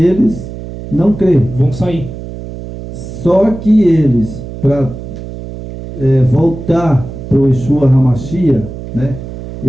eles não creem. Vão sair. Só que eles, para voltar para o Yeshua HaMashiach, né?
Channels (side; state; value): right; noise; hum, 11 dB below the sound